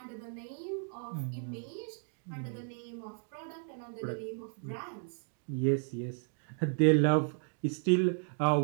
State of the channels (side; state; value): left; silent; 55 dB below the other